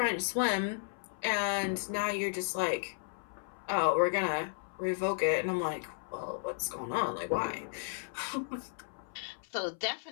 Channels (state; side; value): silent; right; 55 dB below the other